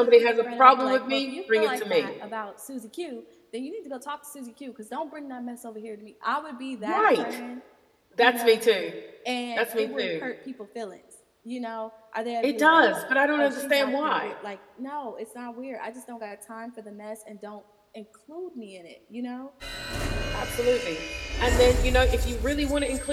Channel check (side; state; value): both; identical; correlation 1.00